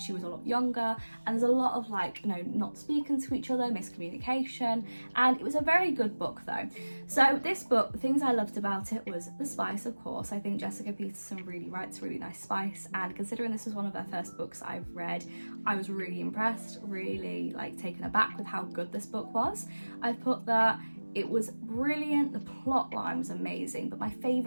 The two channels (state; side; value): inverted; both; correlation -1.00